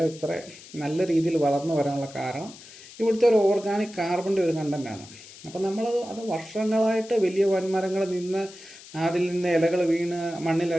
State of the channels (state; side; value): noise; left; hiss, 18 dB below the sound